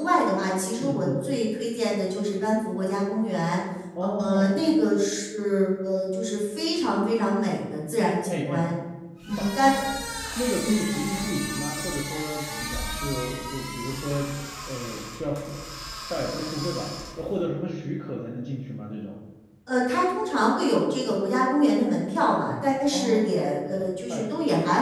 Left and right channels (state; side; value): identical; both; correlation 1.00